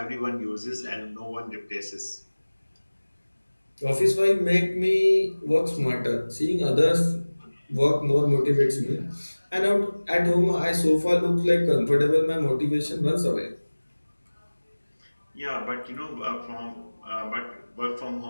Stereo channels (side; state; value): both; inverted; correlation -1.00